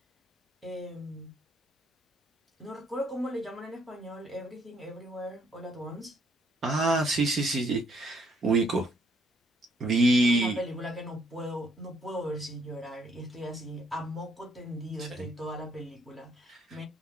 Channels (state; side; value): normal; both; correlation 0.68